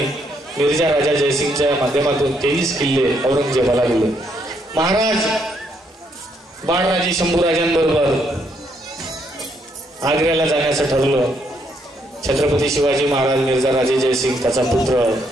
मिर्झा राजा जयसिंगच्या माध्यमातून 23 किल्ले औरंगजेबाला दिले. महाराज बाळराजे शंभूराजांबरोबर आग्र्याला जाण्याचं ठरवलं. छत्रपती शिवाजी महाराज, मिर्झा राजे जयसिंग, त्याचा पुत्र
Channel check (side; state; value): both; normal; correlation 0.73